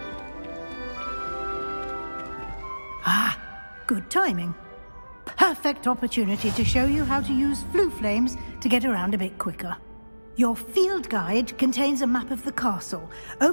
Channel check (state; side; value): inverted; both; correlation -1.00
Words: Ah, good timing. Perfect opportunity to show you how to use flue flames to get around a bit quicker. Your field guide contains a map of the castle.